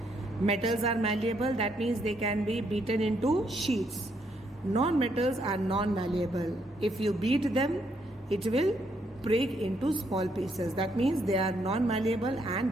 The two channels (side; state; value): both; normal; correlation 0.74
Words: Metals are malleable, that means they can be beaten into sheets. Non-metals are non-malleable. If you beat them, it will break into small pieces. That means they are non-malleable and